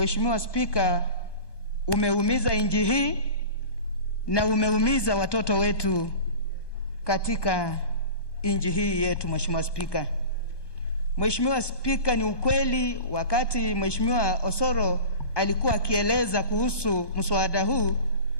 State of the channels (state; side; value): late; right; 1.2 ms